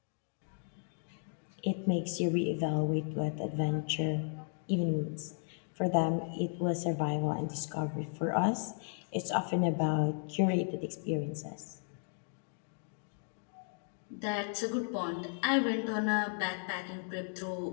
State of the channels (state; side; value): silent; right; 54 dB below the other